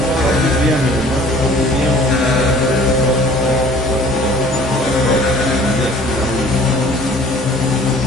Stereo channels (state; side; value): normal; both; correlation 0.51